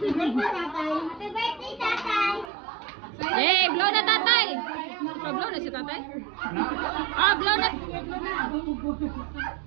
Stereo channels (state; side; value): drops out; left; at 2.5 s